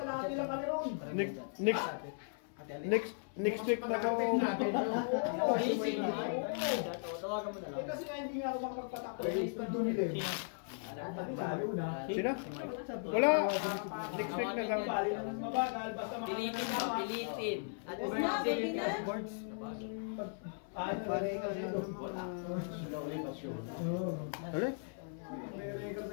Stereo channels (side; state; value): right; silent; 53 dB below the other